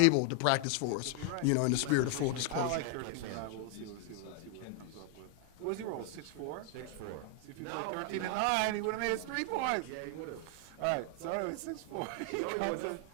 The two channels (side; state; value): both; different; correlation 0.00